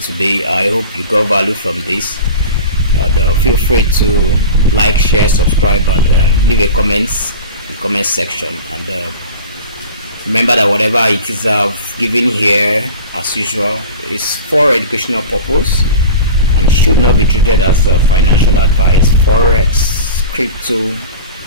I hope you got value from this. Feel free to like, share, subscribe, and leave a comments in the comment section. And remember that whatever it is I've given here, as usual, is for educational purpose. and should not be treated as financial advice. Forex, crypto,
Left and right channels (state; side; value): inverted; both; correlation -0.34